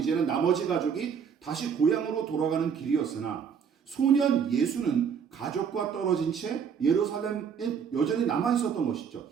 나머지 가족이 다시 고향으로 돌아가는 길이었으나 소년 예수는 가족과 떨어진 채 예루살렘에 여전히 남아 있었던 것이죠.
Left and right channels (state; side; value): quieter; left; 7.1 dB